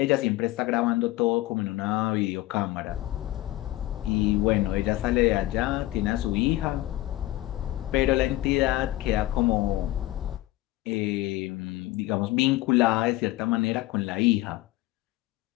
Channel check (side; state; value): right; quieter; 16.7 dB